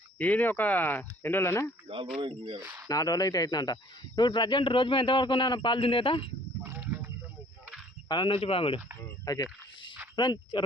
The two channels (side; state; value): both; normal; correlation 0.56